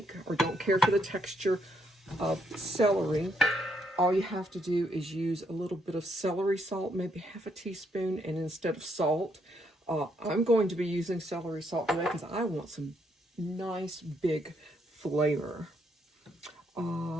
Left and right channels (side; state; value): both; normal; correlation 0.74